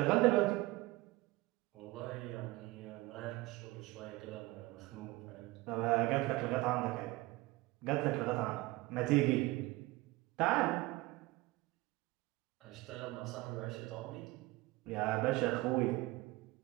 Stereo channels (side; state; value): left; quieter; 20.7 dB